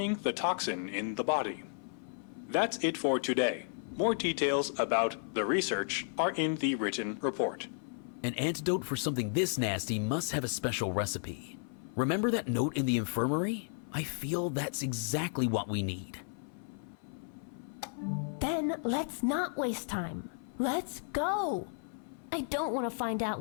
the toxin in the body. That's it for today. More details about the research are in the written report. An antidote for something this nasty must have a special recipe. Remember that note in the infirmary? I feel that's exactly what we need. Then let's not waste time. Let's go! I don't want to find out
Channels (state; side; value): silent; right; 55 dB below the other